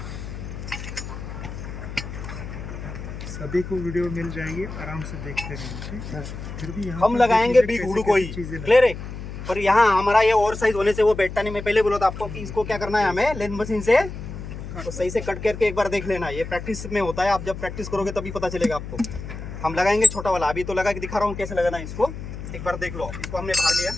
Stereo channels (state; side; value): noise; left; hum, 9 dB below the sound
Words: सभी को वीडियो मिल जाएगी, आराम से देखते रहेंगे। फिर भी हम लगाएंगे बिग हुड को ही। क्लियर है? पर यहाँ हमारा ये ओवर साइज होने से वो बैठता नहीं। मैं पहले बोला था आपको कि इसको क्या करना है, हमें लेंथ मशीन से तो सही से कट करके एक बार देख लेना। ये प्रैक्टिस में होता है, आप जब प्रैक्टिस करोगे तभी पता चलेगा आपको। हम लगाएंगे छोटा वाला, अभी तो लगा के दिखा रहा हूँ कैसे लगाना है इसको, एक बार देख लो। इसको हमने बाहर लिया,